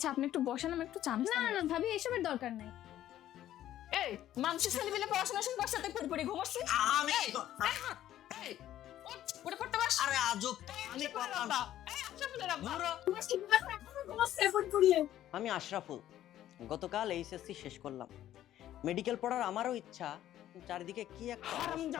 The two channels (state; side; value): quieter; right; 12.5 dB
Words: আপনি একটু বসেন, আমি একটু চা না না না ভাবি, এসবের দরকার নাই। এই মানুষের ছেলে মিলে পড়াশোনা শুরু করছে, তাই পড়ে ঘুমাচ্ছি আমি এই ওটা করতে পারছ? আরে আজব আমি করলাম। এই আশরাফুলের আব্বা আমি আশরাফুল, গতকাল এইচএসসি শেষ করলাম। মেডিকেল পড়ার আমারও ইচ্ছা, চারিদিকে কি একটা